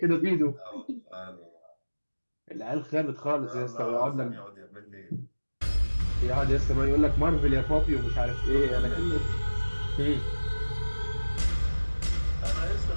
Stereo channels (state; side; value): inverted; both; correlation -1.00